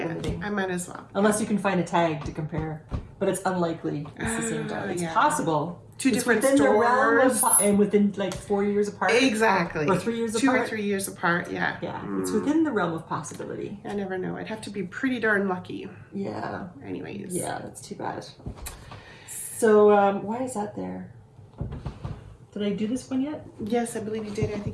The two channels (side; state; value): both; identical; correlation 1.00